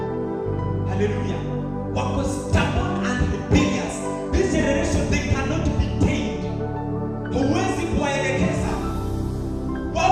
Hallelujah. Wako stubborn and rebellious. This generation, they cannot be tamed. Huwezi kuwaelekeza.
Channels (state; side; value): identical; both; correlation 1.00